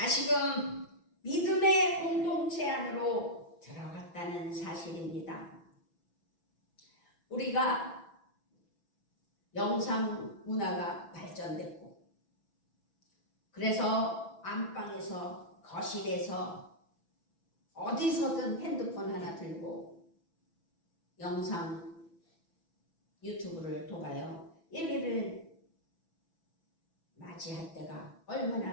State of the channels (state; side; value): late; right; 6.0 ms